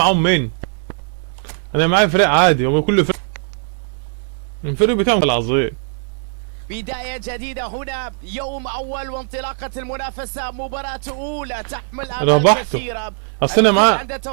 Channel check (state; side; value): silent; left; digital silence